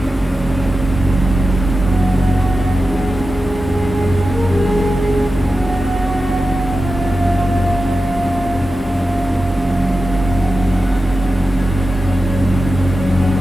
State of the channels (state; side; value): normal; both; correlation 0.92